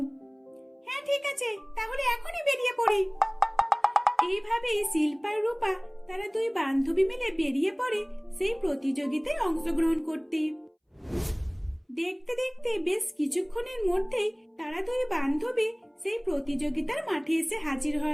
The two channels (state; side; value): identical; both; correlation 1.00